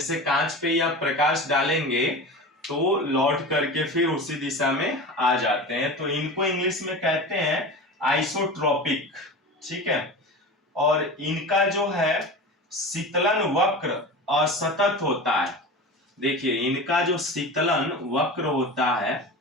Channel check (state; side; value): normal; both; correlation 0.30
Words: कांच पे या प्रकाश डालेंगे तो लौट करके फिर उसी दिशा में आ जाते हैं, तो इनको इंग्लिश में कहते हैं आइसोट्रॉपिक, ठीक है। और इनका जो है शीतलन वक्र असतत होता है। देखिए, इनका जो शीतलन वक्र होता है,